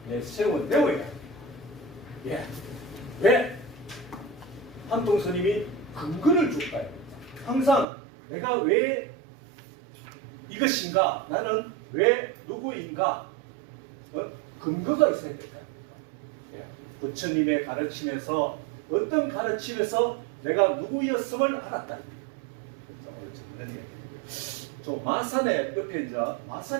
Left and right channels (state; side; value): drops out; left; at 7.9 s